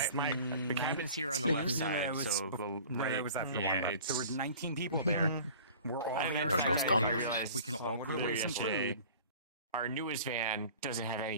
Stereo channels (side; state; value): both; inverted; correlation -0.44